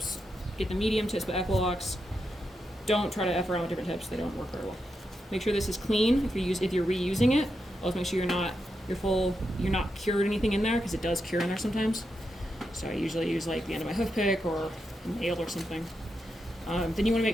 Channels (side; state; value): both; normal; correlation 0.85